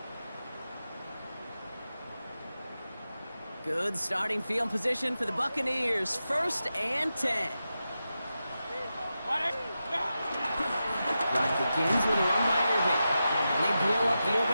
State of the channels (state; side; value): inverted; both; correlation -0.91